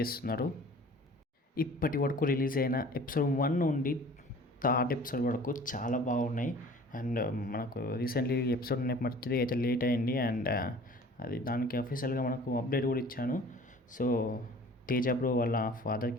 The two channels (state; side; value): normal; both; correlation 0.47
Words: ఇప్పటి వరకు రిలీజ్ అయిన ఎపిసోడ్ 1 నుండి థర్డ్ ఎపిసోడ్ వరకు చాలా బాగున్నాయి. అండ్ మనకు రీసెంట్లీ ఎపిసోడ్ నెంబర్ 3 అయితే లేట్ అయింది. అండ్ అది దానికి అఫీషియల్గా మనకు అప్డేట్ కూడా ఇచ్చాను. సో తేజ బ్రో వాళ్ళ